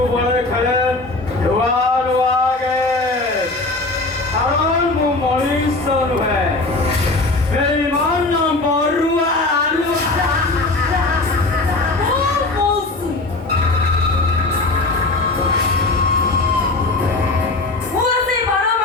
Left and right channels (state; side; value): quieter; right; 3.1 dB